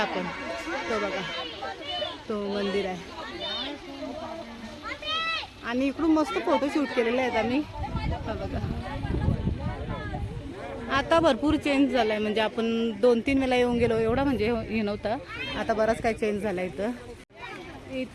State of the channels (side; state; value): both; identical; correlation 1.00